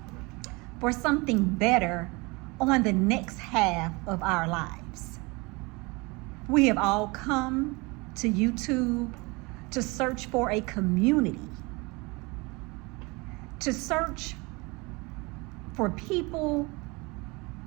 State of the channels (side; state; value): left; quieter; 26.1 dB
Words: for something better on the next half of our lives. We have all come to YouTube to search for a community, to search for people